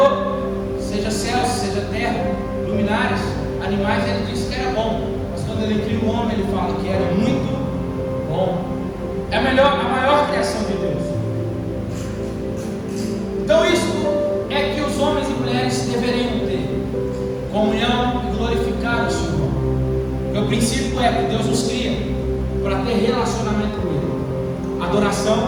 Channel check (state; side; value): identical; both; correlation 1.00